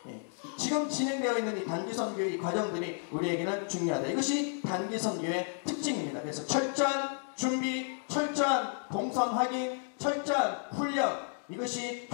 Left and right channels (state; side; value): silent; right; 56 dB below the other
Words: 지금 진행되어 있는 이 단기 선교의 과정들이 우리에게는 중요하다. 이것이 단기 선교의 특징입니다. 그래서 철저한 준비, 철저한 동선 확인, 철저한 훈련, 이것이